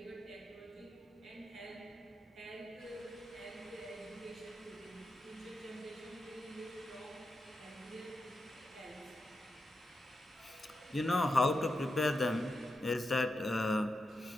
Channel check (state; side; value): normal; both; correlation 0.87